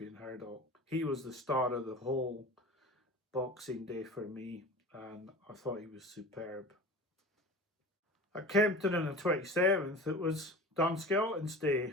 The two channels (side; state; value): both; normal; correlation 0.36